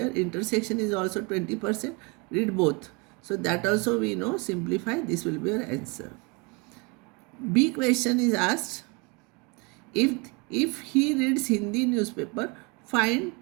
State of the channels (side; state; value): left; quieter; 29.9 dB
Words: Intersection is also 20%. Read both. So that also we know. Simplify. This will be your answer. B question is asked. If he reads Hindi newspaper, find